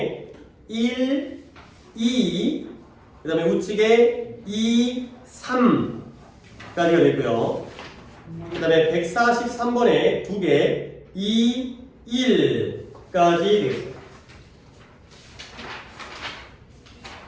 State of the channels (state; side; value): identical; both; correlation 1.00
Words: 1, 2 그 다음에 우측에 2, 3까지가 됐고요. 그 다음에 143번에 2개 2, 1까지 되겠습니다.